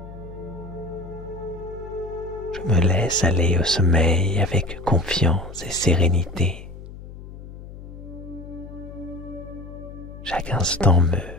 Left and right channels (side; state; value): left; noise; hum, 14 dB below the sound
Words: Je me laisse aller au sommeil avec confiance et sérénité. Chaque instant me